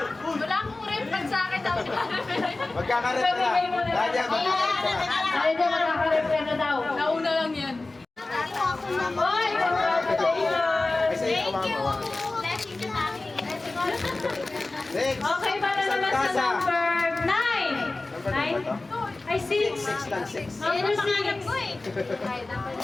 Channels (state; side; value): quieter; right; 3.1 dB